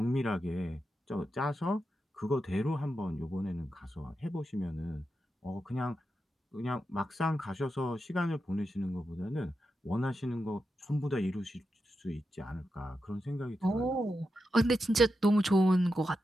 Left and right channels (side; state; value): both; normal; correlation 0.88